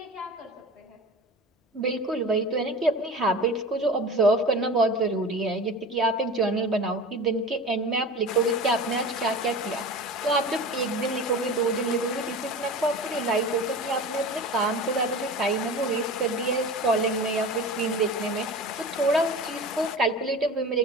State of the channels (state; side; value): normal; both; correlation 0.34